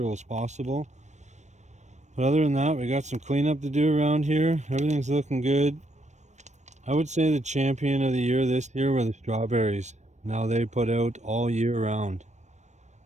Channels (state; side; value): late; left; 0.34 ms